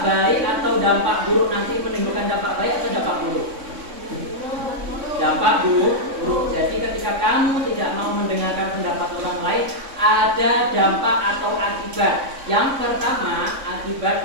baik atau dampak buruk, nanti menimbulkan dampak baik atau dampak buruk? Dampak buruk. Jadi ketika kamu tidak mau mendengarkan pendapat orang lain, ada dampak atau akibat. Yang pertama,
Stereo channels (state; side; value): late; left; 3.6 ms